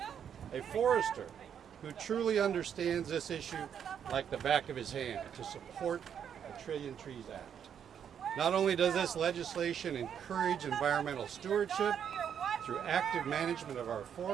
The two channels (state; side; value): quieter; left; 8.4 dB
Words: a forester who truly understands this issue like the back of his hand, to support the Trillion Trees Act. Not only does this legislation encourage environmental stewardship through active management of our